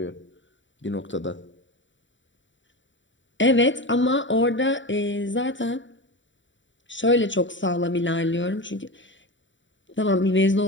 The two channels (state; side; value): late; right; 0.55 ms